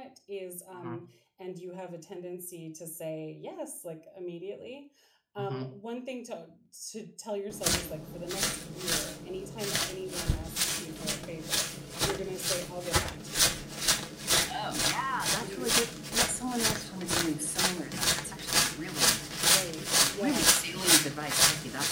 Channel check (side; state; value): both; identical; correlation 1.00